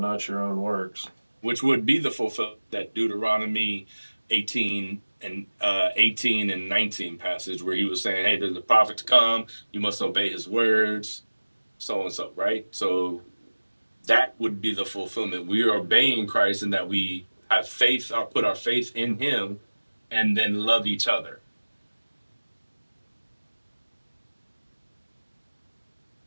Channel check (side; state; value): both; inverted; correlation -1.00